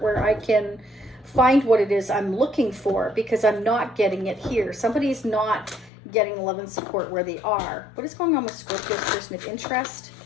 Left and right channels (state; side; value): drops out; right; at 5.9 s